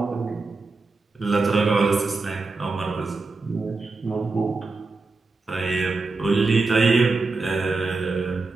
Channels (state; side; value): quieter; left; 3.8 dB